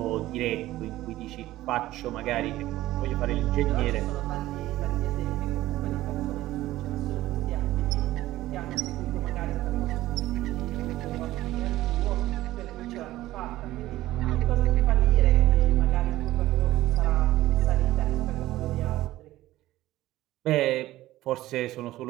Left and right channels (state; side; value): quieter; left; 15.8 dB